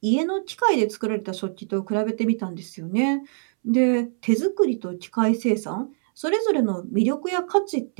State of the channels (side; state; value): left; silent; 62 dB below the other